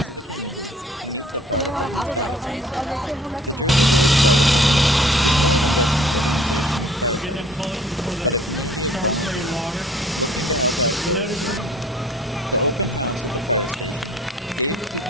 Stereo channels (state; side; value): normal; both; correlation 0.54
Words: of the community to meet the fire department staff. The Jersey Village Fire Department is more than just an organization of firefighters, but a community of volunteers looking to help out those around them. The open house at the fire station gave